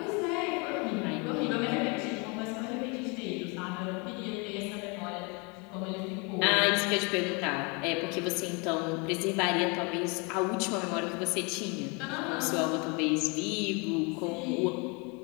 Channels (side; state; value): right; quieter; 31.1 dB